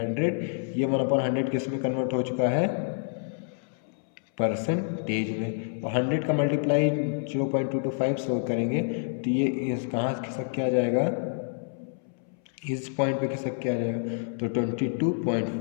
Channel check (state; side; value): silent; right; 59 dB below the other